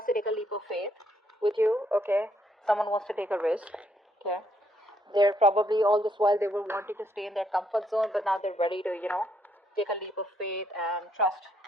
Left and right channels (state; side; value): normal; both; correlation 0.72